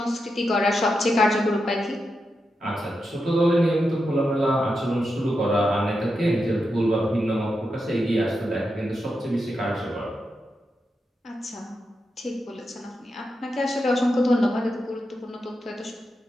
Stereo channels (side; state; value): both; normal; correlation 0.87